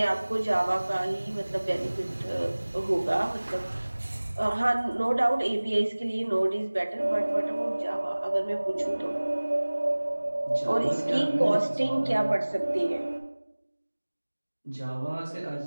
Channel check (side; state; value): both; inverted; correlation -1.00